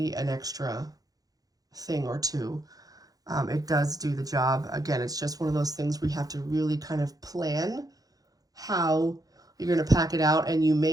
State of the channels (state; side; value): late; left; 0.18 ms